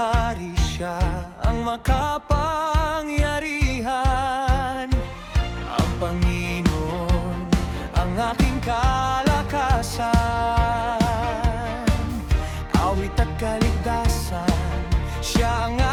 Siya ang makapangyarihan. Ang Panginoon ang aking kalakasan, awit at kaligtasan. Siya ang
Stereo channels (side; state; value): both; identical; correlation 1.00